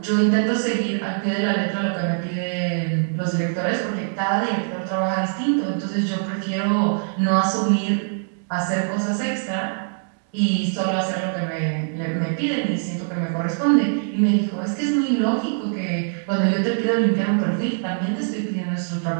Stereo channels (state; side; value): silent; left; digital silence